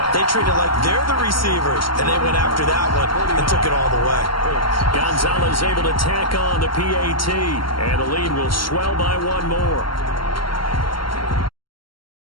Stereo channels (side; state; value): right; late; 0.73 ms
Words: They treat it like they're the receivers, and they went after that one and took it all the way. Gonzalez able to tack on the PAT, and the lead will swell by 1 more.